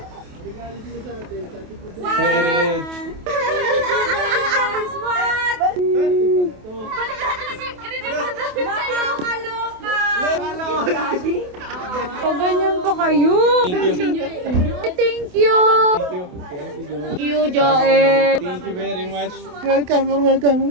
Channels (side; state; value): left; late; 28 ms